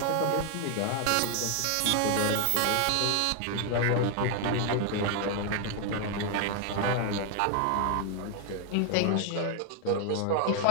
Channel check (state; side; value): different; both; correlation 0.00